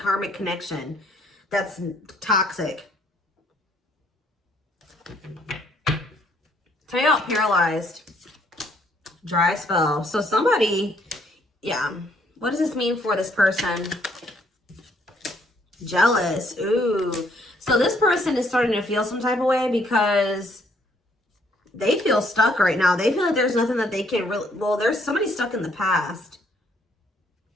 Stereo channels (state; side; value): normal; both; correlation 0.67